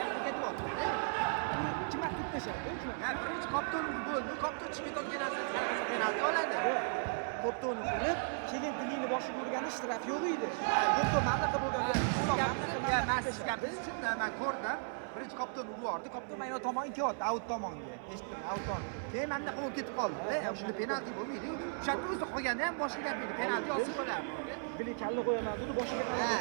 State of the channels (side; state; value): left; silent; 54 dB below the other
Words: ketib qoldi. Kim vaqt tashadi? Ya birinchi kopton bo'ldi, kopton chiqib ketgan narsa penalti oladi. Kopto'ni urib, keyin dilini boshiga urgani ishtiraki yo'q edi. Kopto mamlakat bo'lgan. Men ko'rdim. Birinchi kopton urib yubordi. Kopton mana tomonga ketdi, out tomonga. Eshitdim, out tomon. Keyin menda qo'l ketib qoldi. Shunda penalti bo'lmaydi. O'shanda o'zi qo'yganda ham boshiga gapirdi. Penalti olsa bo'lardi. Bili kalla qo'yaman dedi, boshiga.